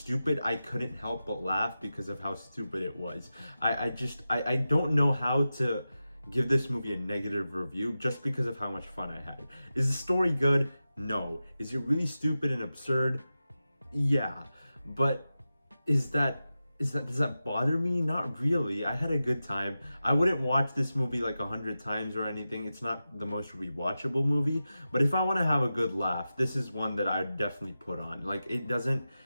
I couldn't help but laugh because of how stupid it was. I don't know how to give this movie a negative review just because of how much fun I had. Is the story good? No. Is it really stupid and absurd? Yeah. But does that bother me? Not really. I had a good time. I wouldn't watch this movie like 100 times or anything. It's not the most rewatchable movie, but if I want to have a good laugh, this is one that I would definitely put on. Like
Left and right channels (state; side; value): inverted; both; correlation -0.93